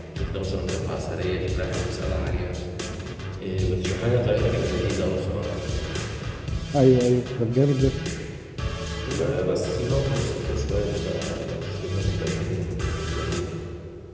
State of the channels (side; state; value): both; identical; correlation 1.00